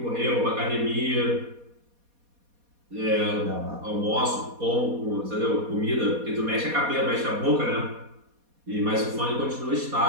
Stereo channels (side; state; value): left; late; 4.2 ms